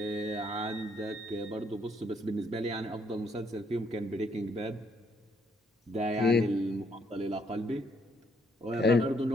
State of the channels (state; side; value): normal; both; correlation 0.70